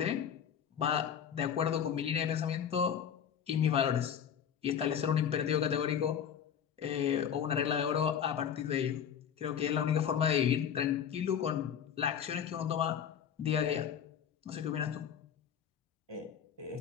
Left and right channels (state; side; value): quieter; right; 8.5 dB